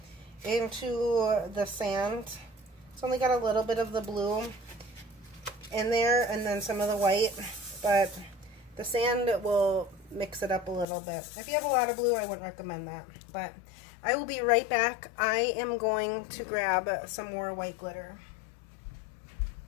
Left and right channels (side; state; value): right; drops out; at 10.9 s